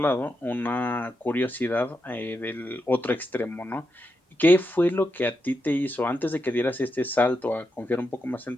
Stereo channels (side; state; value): both; normal; correlation 0.85